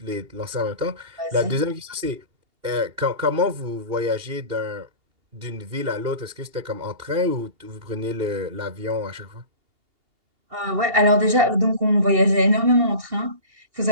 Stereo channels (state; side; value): late; left; 2.8 ms